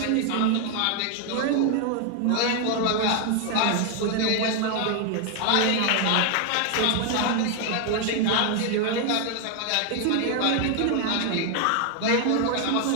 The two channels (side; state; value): both; different; correlation 0.00